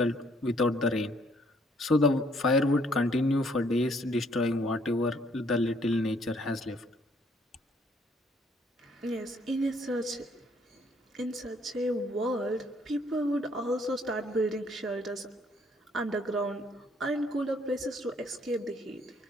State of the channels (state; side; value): normal; both; correlation 0.65